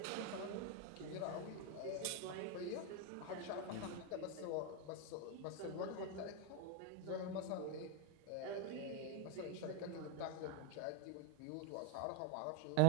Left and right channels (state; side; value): different; both; correlation 0.01